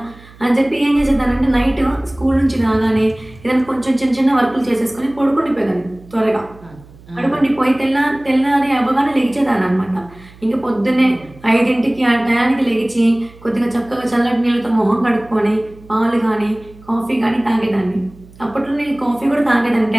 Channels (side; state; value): right; noise; hum, 23 dB below the sound